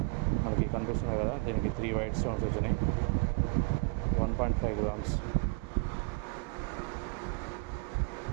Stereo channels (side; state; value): left; quieter; 31.5 dB